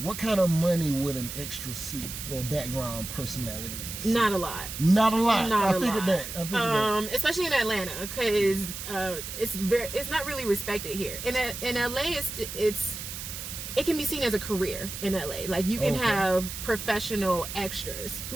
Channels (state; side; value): noise; right; hiss, 8 dB below the sound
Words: kind of money would an extra see or background personality see? Not a lot. I figured that. Especially in Atlanta, because it's not really respected here. In LA, it can be seen as a career in LA. Like you can have professional extras